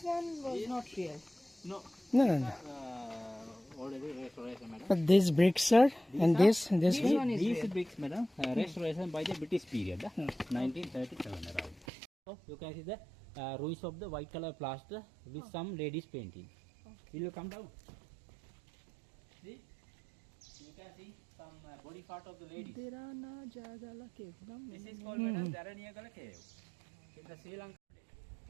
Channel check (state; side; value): drops out; left; at 11.9 s